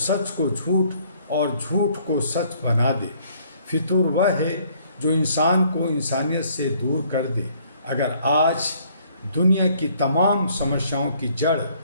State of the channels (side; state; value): both; inverted; correlation -0.63